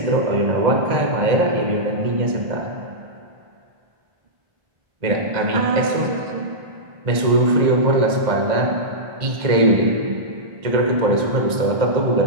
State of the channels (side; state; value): left; late; 1.8 ms